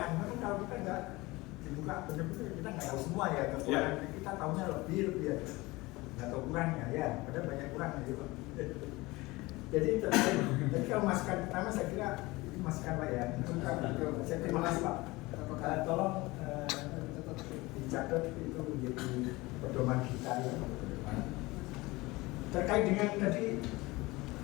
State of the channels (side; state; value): right; quieter; 21.6 dB